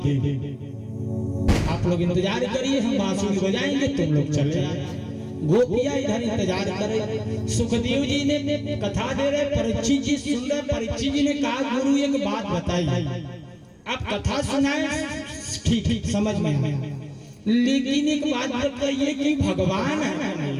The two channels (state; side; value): identical; both; correlation 1.00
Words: आप लोग इंतजार करिए, हम बांसुरी बजाएंगे, तुम लोग चले आए। गोपियां इधर इंतजार करे। सुखदेव जी ने कथा दे रहे, परीक्षित जी सुन रहे। परीक्षित जी ने कहा गुरु एक बात बताई, आप कथा सुनाए ठीक समझ में आए, लेकिन एक बात बताइए कि भगवान है